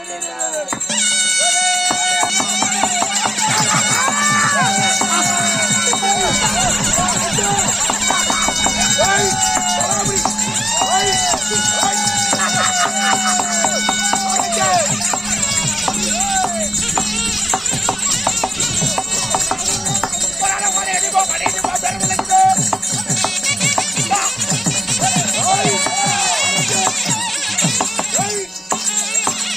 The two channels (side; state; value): both; normal; correlation 0.94